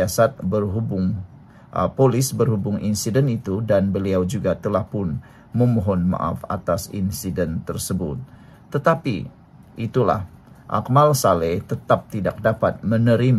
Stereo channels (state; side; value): identical; both; correlation 1.00